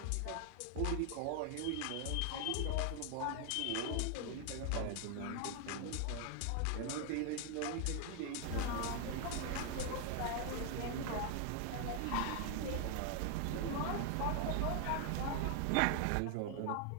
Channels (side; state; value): both; different; correlation 0.00